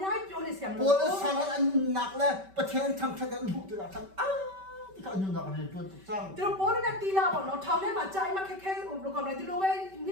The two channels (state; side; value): late; left; 5.2 ms